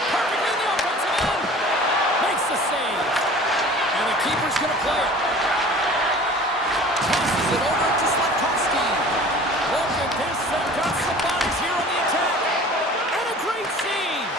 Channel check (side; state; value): both; normal; correlation 0.44